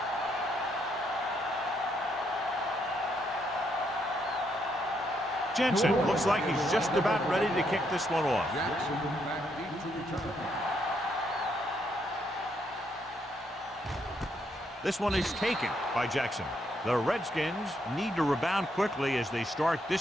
Jensen looks like he's just about ready to kick this one off. Jackson back deep to return. This one is taken by Jackson. The Redskins need to rebound quickly as they start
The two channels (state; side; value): normal; both; correlation 0.75